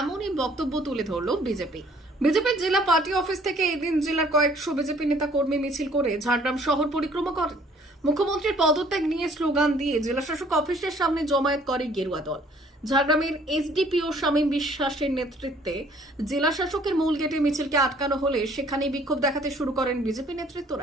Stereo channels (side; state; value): both; normal; correlation 0.58